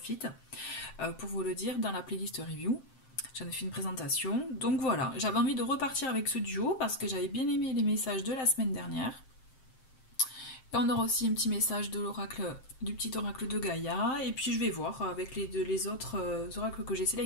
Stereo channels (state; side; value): late; right; 7.6 ms